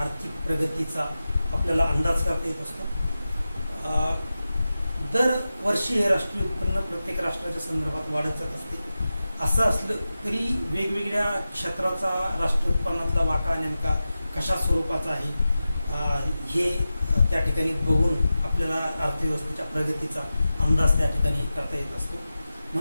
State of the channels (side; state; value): both; inverted; correlation -0.93